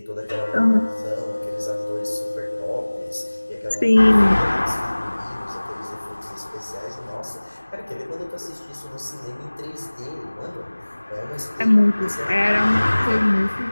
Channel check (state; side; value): inverted; both; correlation -1.00